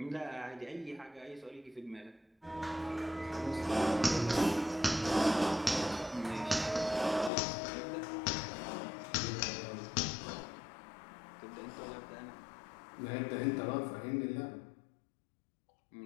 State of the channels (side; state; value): right; drops out; at 7.3 s